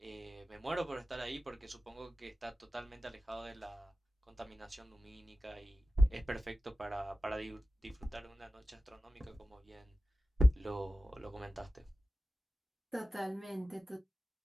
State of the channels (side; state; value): both; normal; correlation 0.94